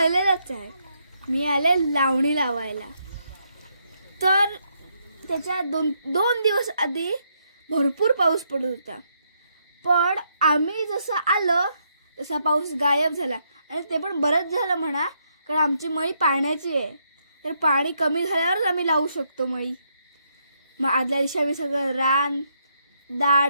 आहे। मी आले लावणी लावायला। तर त्याच्या दोन दिवस आधी भरपूर पाऊस पडत होता, पण आम्ही जसं आलो तसा पाऊस गायब झाला। आणि ते पण बरंच झालं म्हणा, कारण आमची मळी पाण्याची आहे, तर पाणी कमी झाल्यावरच आम्ही लावू शकतो मळी। मग आदल्या दिवशी आम्ही सगळं रान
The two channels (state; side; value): inverted; both; correlation -0.76